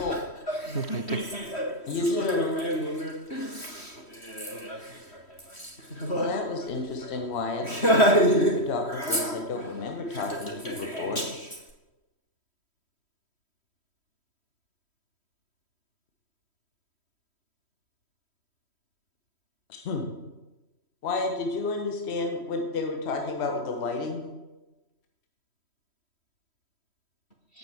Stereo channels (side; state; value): right; late; 3.1 ms